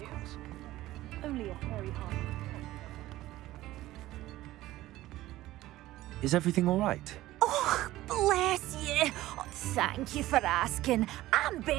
course. Only a hairy heart. Is everything all right? Bless you. Oh, thank you for asking. I'm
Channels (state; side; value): quieter; left; 16.0 dB